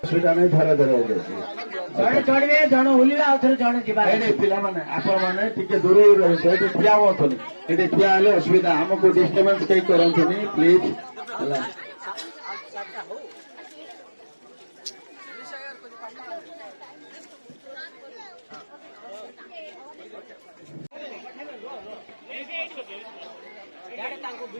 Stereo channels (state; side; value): inverted; both; correlation -1.00